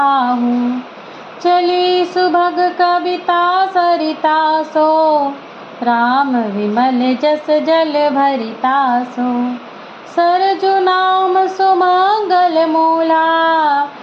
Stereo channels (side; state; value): both; identical; correlation 1.00